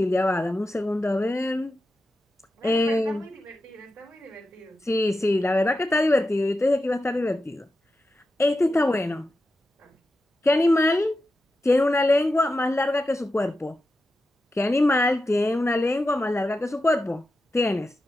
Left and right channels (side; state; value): both; normal; correlation 0.90